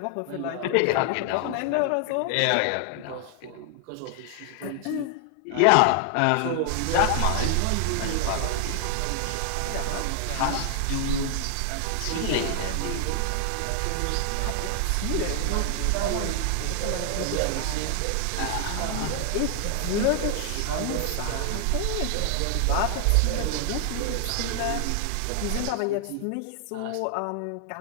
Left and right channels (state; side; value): different; both; correlation 0.00